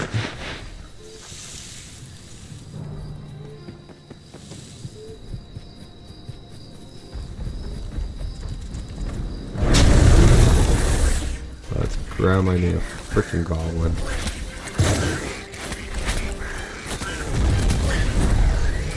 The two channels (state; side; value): identical; both; correlation 1.00